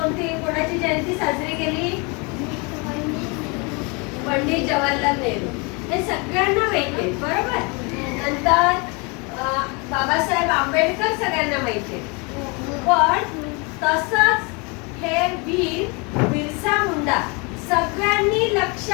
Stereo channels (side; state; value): right; quieter; 30.3 dB